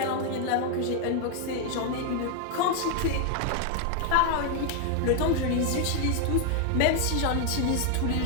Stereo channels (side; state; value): both; different; correlation 0.00